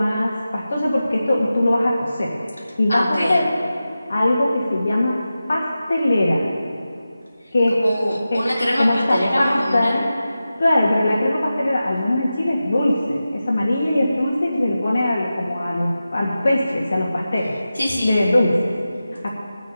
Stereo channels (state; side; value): inverted; both; correlation -0.93